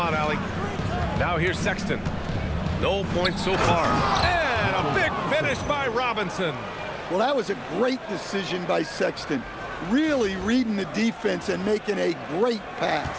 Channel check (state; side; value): identical; both; correlation 1.00